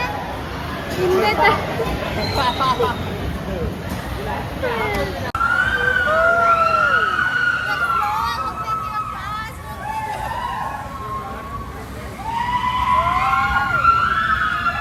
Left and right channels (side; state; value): both; identical; correlation 1.00